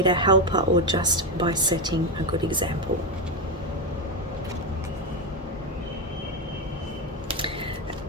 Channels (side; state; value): both; normal; correlation 0.10